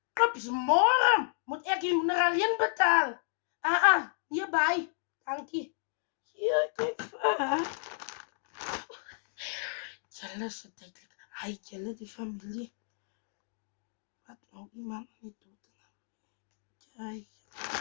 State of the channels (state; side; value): silent; right; digital silence